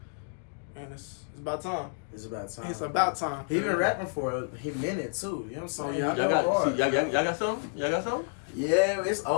and it's about time. It's about time. It's about time. He been rapping for a minute too. You know what I'm saying? Oh, yeah, I Y'all Go got, hard. see, y'all got something? Y'all got something? Yeah, it's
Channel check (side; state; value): right; silent; digital silence